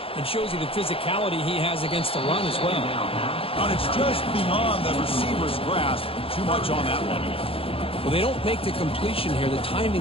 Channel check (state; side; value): late; right; 0.27 ms